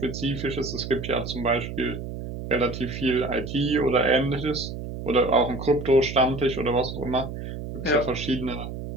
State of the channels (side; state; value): right; noise; hum, 8 dB below the sound